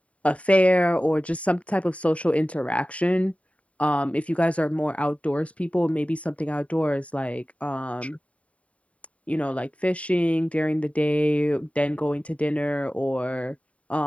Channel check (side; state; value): right; late; 0.066 ms